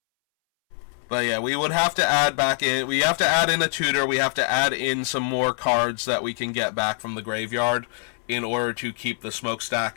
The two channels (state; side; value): silent; right; 63 dB below the other